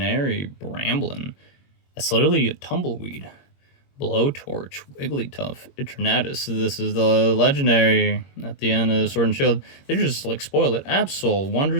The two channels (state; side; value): late; right; 21 ms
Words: Bramblin. That's literally a Tumbleweed. Blowtorch, Wigglytuff, Eternatus. This is the legendary at the end of Sword and Shield. They just like spoil it. Absol,